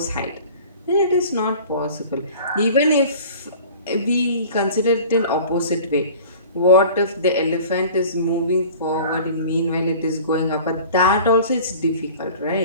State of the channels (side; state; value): both; inverted; correlation -0.43